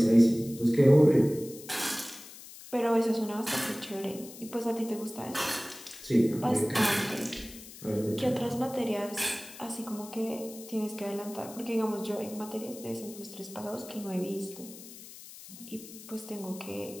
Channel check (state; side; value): noise; left; hiss, 16 dB below the sound